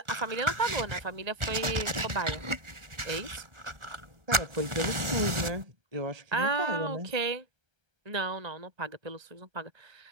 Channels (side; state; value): left; late; 1.4 ms